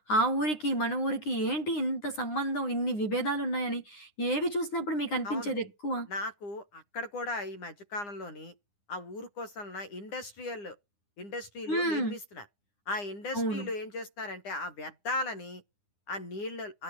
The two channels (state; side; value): late; right; 9.8 ms